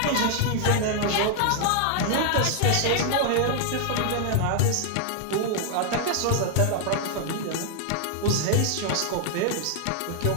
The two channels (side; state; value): both; different; correlation 0.00